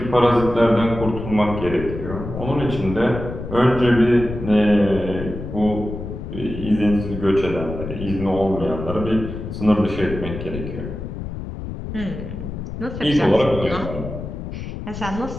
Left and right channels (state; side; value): noise; left; rumble, 8 dB below the sound